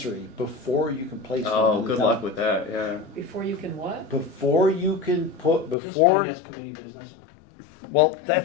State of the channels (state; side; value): drops out; right; at 5.8 s